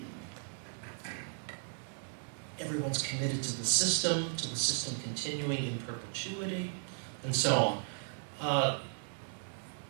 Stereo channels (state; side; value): silent; left; digital silence